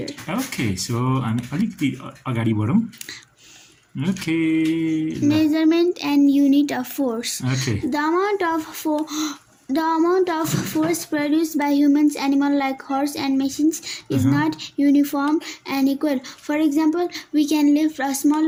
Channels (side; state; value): both; identical; correlation 1.00